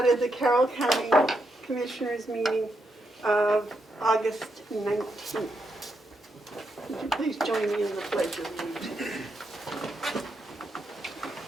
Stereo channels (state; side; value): normal; both; correlation 0.81